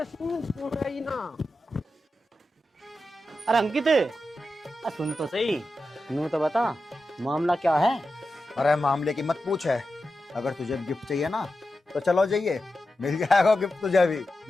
रही ना। अरे अंकित, सुन तो सही, नू तो बता मामला क्या है? अरे मामले की मत पूछ है। अगर तुझे गिफ्ट चाहिए ना तो चलो जाइए, मिल जाएगा गिफ्ट तुझे भी।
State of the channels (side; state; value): both; normal; correlation 0.91